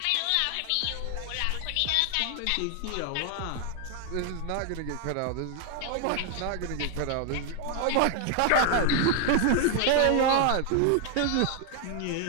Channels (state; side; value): different; both; correlation 0.00